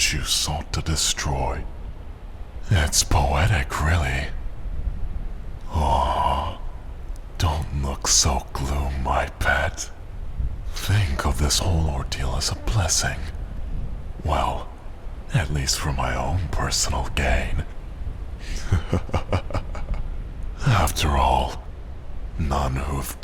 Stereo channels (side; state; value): both; identical; correlation 1.00